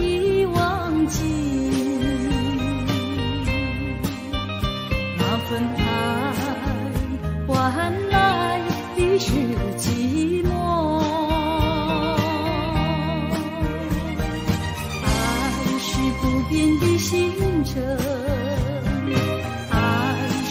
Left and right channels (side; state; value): both; identical; correlation 1.00